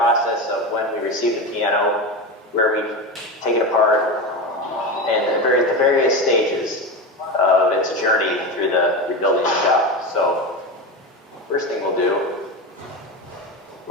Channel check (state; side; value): normal; both; correlation 0.21